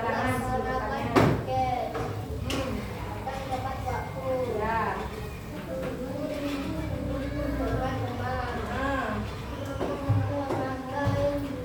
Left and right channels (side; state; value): both; identical; correlation 1.00